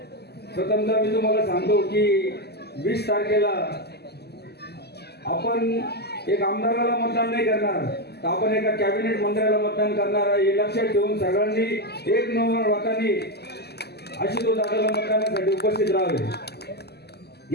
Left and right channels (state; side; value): late; right; 0.47 ms